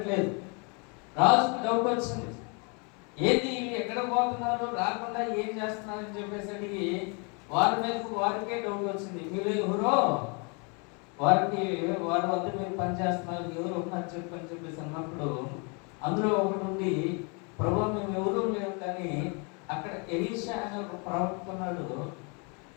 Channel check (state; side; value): quieter; right; 34.2 dB